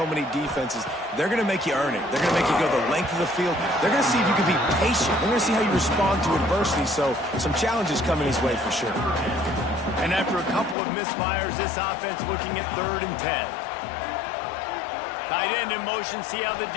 many defenses. They're going to make you earn it. They're going to make you go the length of the field. They're going to see if you can be patient. They're going to see how you respond to adversity. So some challenges coming his way for sure. And after a couple of misfires, this offense looking at 3rd and 10. Tight end in motion, see how the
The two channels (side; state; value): right; drops out; at 10.8 s